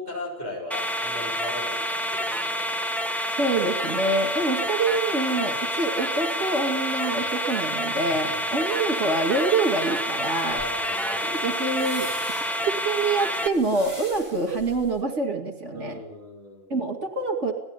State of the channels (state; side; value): normal; both; correlation 0.31